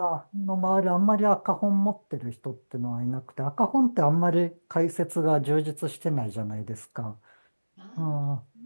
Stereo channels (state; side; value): inverted; both; correlation -1.00